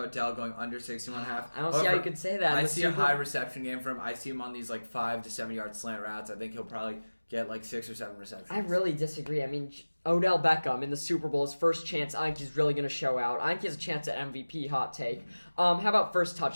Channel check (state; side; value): inverted; both; correlation -1.00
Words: Odell going under 61.5. I don't see how you could say that. I see a high reception game for him. I see him on these 5 to 7 yard slant routes. I think he'll probably get 6 or 7 receptions. I really disagree. I mean, Odell Beckham in the Super Bowl, his first chance, I think he's really going to show out. I think he has a chance at MVP, hot take. How about first